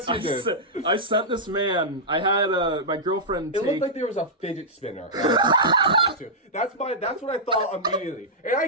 you did. I sent this man, I had my girlfriend It looked like there was a fidget spinner. That's what I thought immediately. And I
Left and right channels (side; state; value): both; normal; correlation -0.11